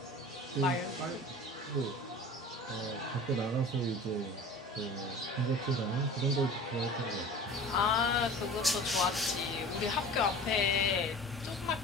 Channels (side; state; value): both; normal; correlation 0.39